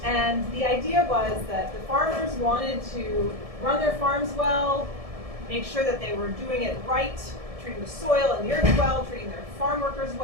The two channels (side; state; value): left; late; 1.7 ms